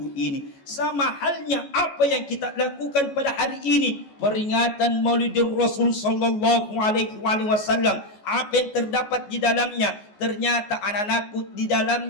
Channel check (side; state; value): right; late; 14 ms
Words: ini. Sama halnya apa yang kita lakukan pada hari ini, peringatan Maulidur Rasul sallallahu alaihi wasallam. Apa yang terdapat di dalamnya? Ternyata anak-anakku di